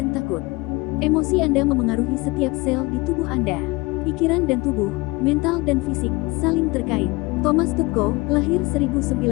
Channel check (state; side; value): quieter; right; 23.6 dB